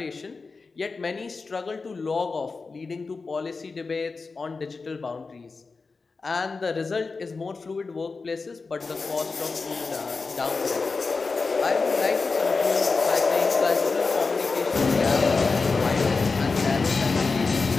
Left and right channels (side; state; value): right; quieter; 4.3 dB